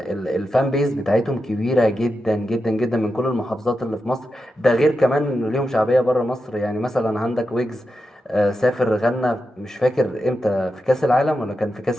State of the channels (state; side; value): normal; both; correlation 0.89